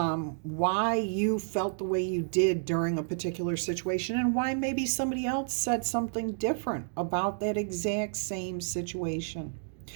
you felt the way you did during a particular situation, and why maybe somebody else said something different about that exact same situation.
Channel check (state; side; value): silent; left; digital silence